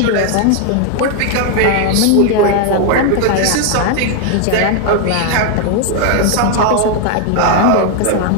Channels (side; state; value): both; different; correlation 0.01